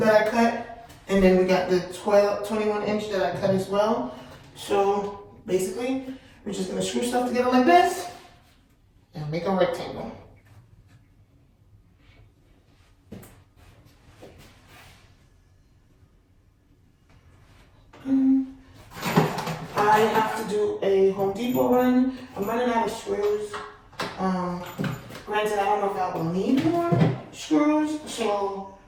I cut, and then we got the 21-inch that I cut as well. So, basically, we're just gonna screw stuff together like this, and make a rectangle. I have to do a Home Depot run. I'm running out of screws. Granted, I don't know if I will need more screws, so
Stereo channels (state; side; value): identical; both; correlation 1.00